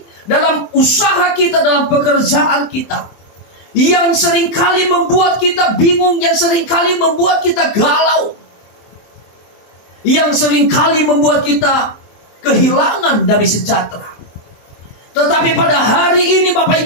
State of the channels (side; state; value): right; late; 24 ms